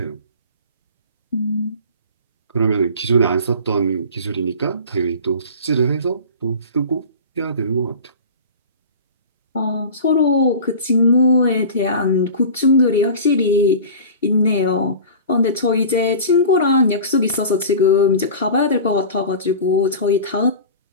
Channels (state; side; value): inverted; both; correlation -0.36